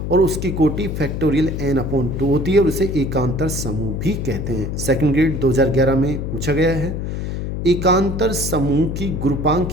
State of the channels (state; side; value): noise; left; hum, 4 dB below the sound